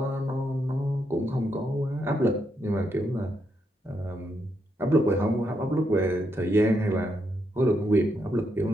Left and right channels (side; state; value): both; normal; correlation 0.80